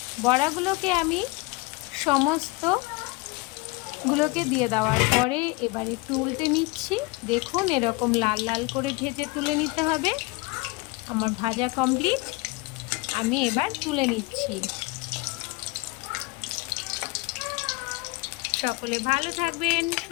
বড়াগুলোকে আমি সমস্তগুলোকে দিয়ে দেওয়ার পরে এবার একটু উল্টে নিচ্ছি। দেখুন, এরকম লাল লাল করে ভেজে তুলে নিতে হবে। আমার ভাজা কমপ্লিট, আমি এবার তুলে নিচ্ছি। সকলে ভালো থাকবেন,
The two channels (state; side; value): quieter; right; 25.8 dB